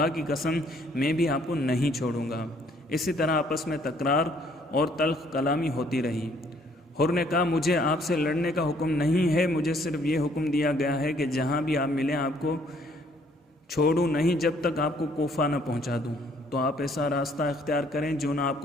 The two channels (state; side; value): normal; both; correlation 0.63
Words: کی قسم میں بھی آپ کو نہیں چھوڑوں گا۔ اسی طرح آپس میں تکرار اور تلخ کلامی ہوتی رہی۔ حر نے کہا مجھے آپ سے لڑنے کا حکم نہیں ہے، مجھے صرف یہ حکم دیا گیا ہے کہ جہاں بھی آپ ملیں آپ کو چھوڑوں نہیں جب تک آپ کو کوفہ نہ پہنچا دوں۔ تو آپ ایسا راستہ اختیار کریں جو نہ آپ